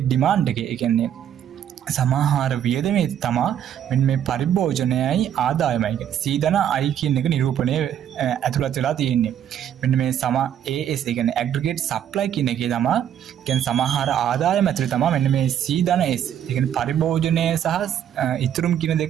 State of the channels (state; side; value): quieter; left; 9.9 dB